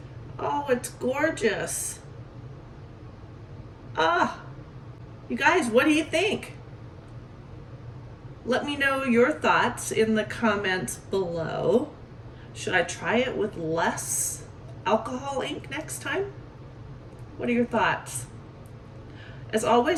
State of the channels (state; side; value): identical; both; correlation 1.00